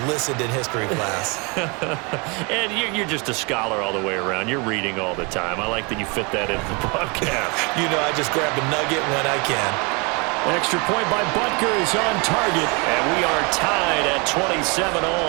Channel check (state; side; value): quieter; left; 30.6 dB